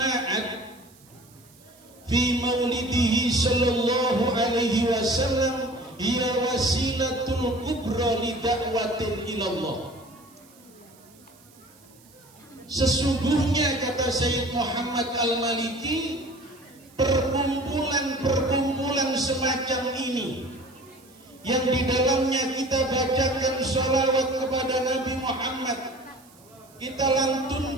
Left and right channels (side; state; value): right; noise; hiss, 27 dB below the sound